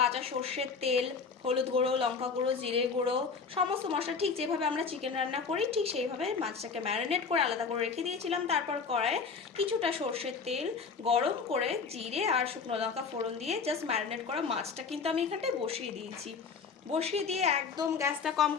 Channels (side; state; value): right; quieter; 5.3 dB